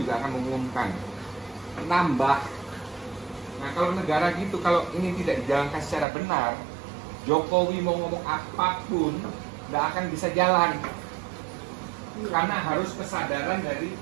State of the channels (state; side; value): drops out; left; at 6.1 s